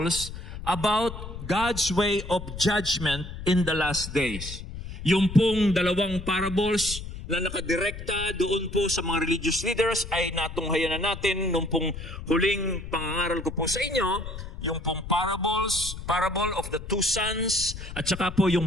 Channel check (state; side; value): noise; left; rumble, 10 dB below the sound